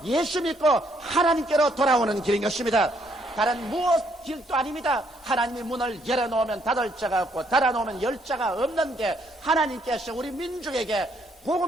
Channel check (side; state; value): both; normal; correlation 0.70